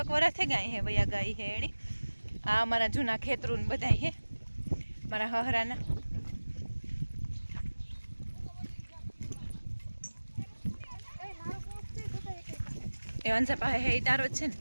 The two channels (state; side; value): inverted; both; correlation -1.00